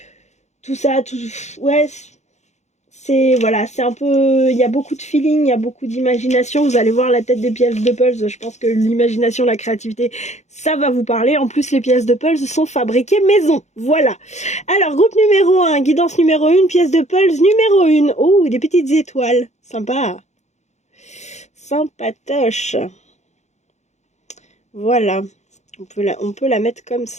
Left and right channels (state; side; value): late; right; 0.33 ms